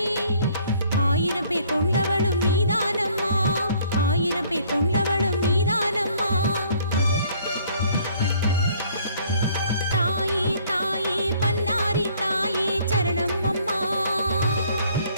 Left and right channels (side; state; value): both; inverted; correlation -0.60